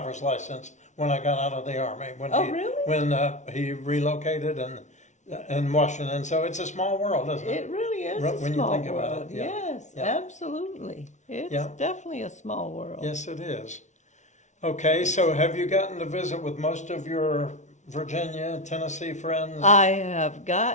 license when I got out of the Army. Really? When he relocated in Washington. So it's a small world, isn't it? It really is When a you small think about world. it, yeah. Yes, Yeah. absolutely. It's Yeah. definitely a small world. Yes, it is. Okay, so have you gotten to visit with most of your Virginia, Tennessee friends? I have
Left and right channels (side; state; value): right; late; 0.34 ms